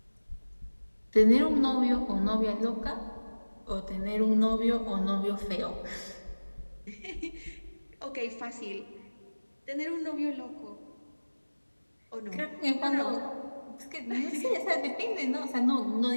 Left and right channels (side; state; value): both; inverted; correlation -1.00